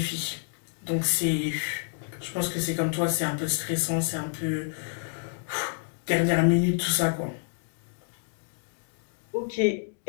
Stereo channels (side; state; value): right; silent; digital silence